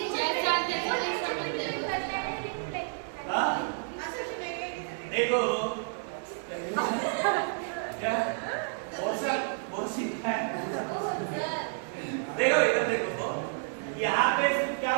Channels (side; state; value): left; silent; 58 dB below the other